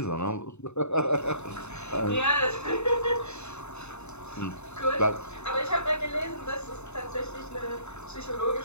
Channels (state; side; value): late; right; 0.81 ms